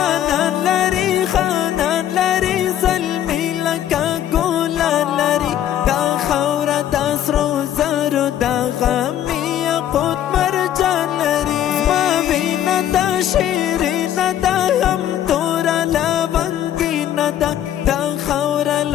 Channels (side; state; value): right; quieter; 11.2 dB